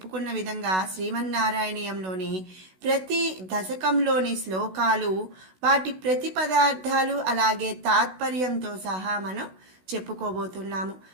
విధంగా శ్రీమన్నారాయణీయంలోని ప్రతి దశకంలోని శ్లోకాలు, వాటి ప్రతి పదార్థాలు, అలాగే తాత్పర్యంతో సహా మనం చెప్పుకోబోతున్నాము।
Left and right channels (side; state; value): left; late; 16 ms